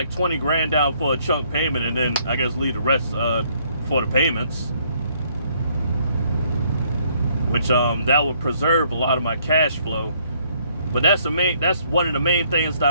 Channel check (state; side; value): inverted; both; correlation -0.66